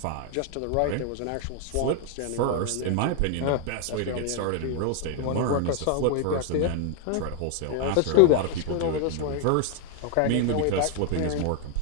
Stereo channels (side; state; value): both; different; correlation 0.00